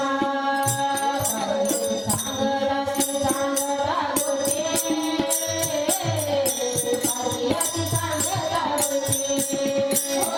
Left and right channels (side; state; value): both; identical; correlation 1.00